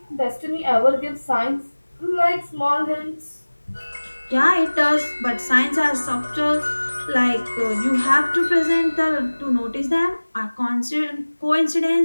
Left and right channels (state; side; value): inverted; both; correlation -1.00